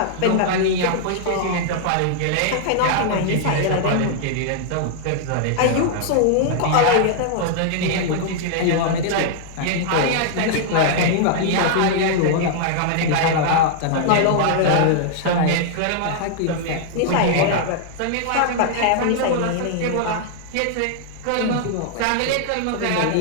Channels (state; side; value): different; both; correlation -0.01